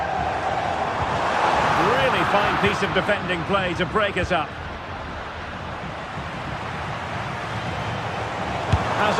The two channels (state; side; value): identical; both; correlation 1.00